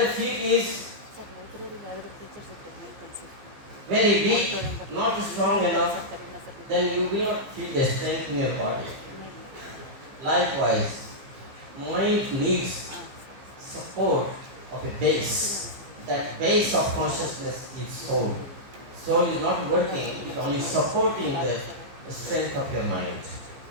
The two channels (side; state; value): left; late; 15 ms